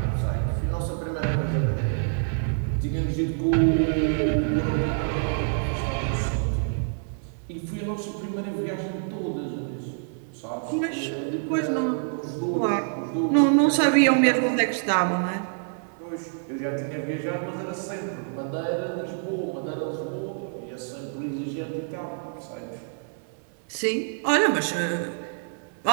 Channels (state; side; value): silent; left; 60 dB below the other